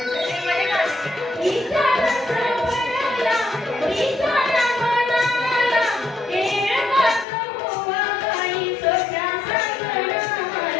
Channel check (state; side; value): drops out; right; at 7.2 s